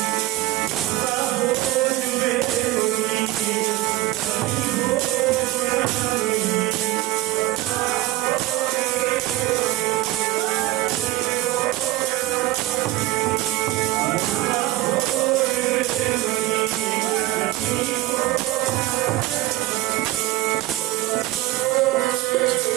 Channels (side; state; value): left; quieter; 16.4 dB